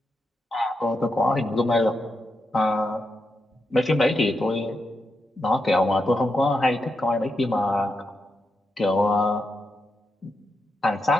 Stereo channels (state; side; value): normal; both; correlation 0.85